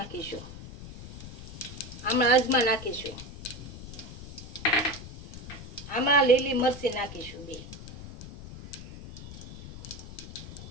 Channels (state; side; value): noise; left; rumble, 13 dB below the sound